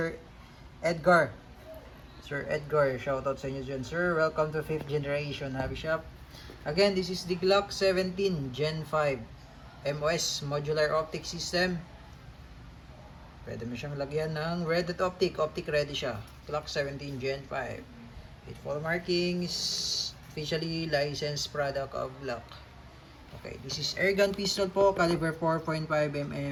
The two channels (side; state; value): both; identical; correlation 1.00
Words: Edgar. Sir Edgar, shoutout sa inyo dyan sir. Welcome to 5th generation Navi Shop. Again, this is the Glock 17 Gen 5 MOS Modular Optic System. Pwede mo siyang lagyan ng red dot optic. Optic ready siya. Glock 17 Gen 5. With full markings, officially licensed product of Glock. Okay, this is airgun pistol po, caliber